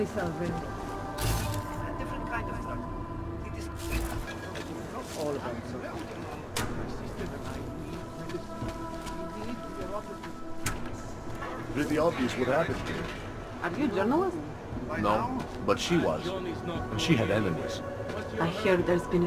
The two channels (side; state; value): both; identical; correlation 1.00